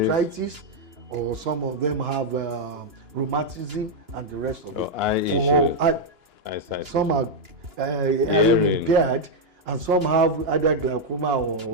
or some of them have rheumatism and the rest of it. Eye issue. Some are hearing impaired, and some have either glaucoma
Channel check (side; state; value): left; late; 2.9 ms